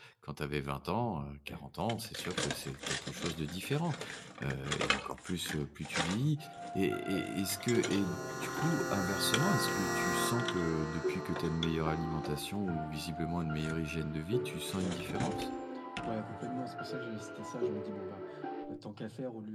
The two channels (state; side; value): identical; both; correlation 1.00